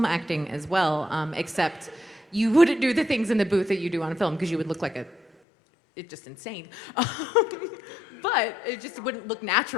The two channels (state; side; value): drops out; right; at 5.2 s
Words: acting as well, except you wouldn't do the things in the booth that you do on film because you would look like it's just insane. But it just wouldn't look